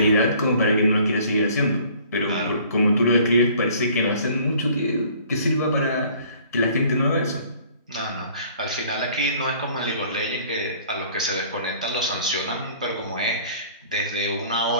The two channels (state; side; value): inverted; both; correlation -0.54